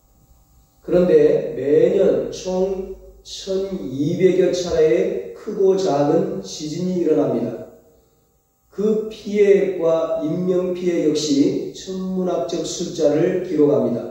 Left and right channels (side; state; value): both; identical; correlation 1.00